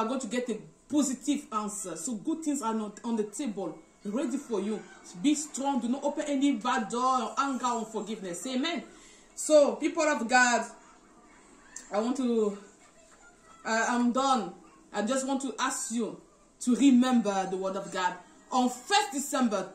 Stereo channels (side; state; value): both; identical; correlation 1.00